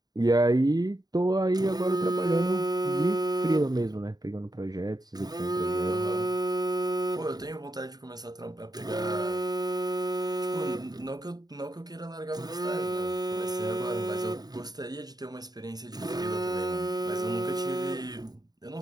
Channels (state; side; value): late; left; 0.19 ms